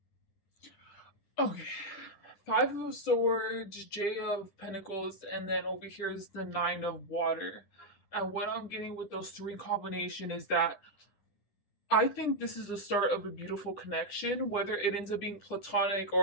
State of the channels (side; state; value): right; late; 10 ms